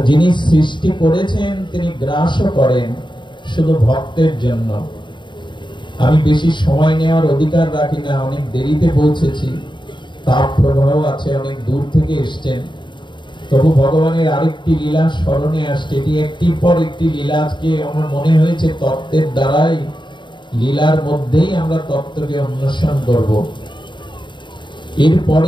যিনি সৃষ্টি করেছেন তিনি গ্রাসও করেন শুধু ভক্তের জন্য। আমি বেশি সময় নেওয়ার অধিকার রাখি না, অনেক দেরিতে পৌঁছেছি, তাপ প্রবাহ আছে, অনেক দূর থেকে এসছেন। তবু ভগবানের আরেকটি লীলা স্মরণে আসছে। এটি একটির পর একটি লীলা। আজকে আমার মনে হয়েছে তত্ত্বের দ্বারাই, লীলার মধ্যেই আমরা তত্ত্বকে অন্বেষণ করব।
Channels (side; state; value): right; late; 0.23 ms